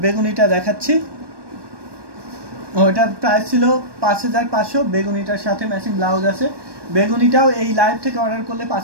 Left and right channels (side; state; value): left; late; 1.2 ms